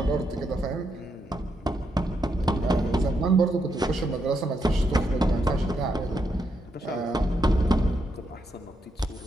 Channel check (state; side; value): normal; both; correlation 0.80